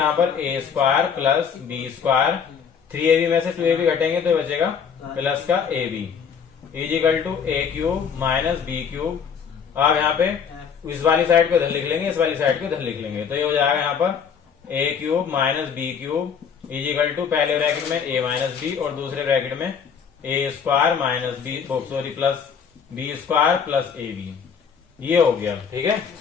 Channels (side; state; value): right; quieter; 6.9 dB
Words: पर a square plus B square, 3ab में से 2ab घटेंगे तो बचेगा प्लस का ab, equal to a cube minus B cube. अब यहाँ पे इस वाली साइड को इधर लिख लेंगे, इस वाली साइड को इधर लिख लेंगे, तो ये हो जाएगा यहाँ पर a cube minus B cube is equal to पहले ब्रैकेट में a माइनस बी और दूसरे ब्रैकेट में a square minus b sorry plus B square plus ab। ये हो गया, ठीक है।